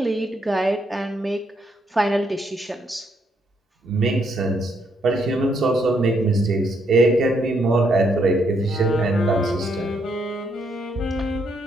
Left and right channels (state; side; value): normal; both; correlation 0.74